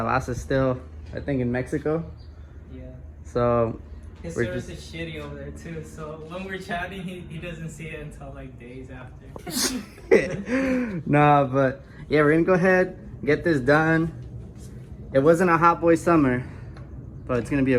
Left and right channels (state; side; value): identical; both; correlation 1.00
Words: still, I think, in Mexico. Yeah. So his service is shitty over there too. So when we're chatting, he doesn't see it until like days after. Nah, but yeah, we're gonna go ahead, get this done. It wasn't a hot boy summer, but it's gonna be